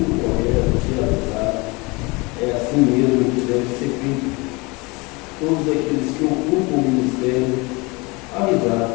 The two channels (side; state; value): right; quieter; 26.1 dB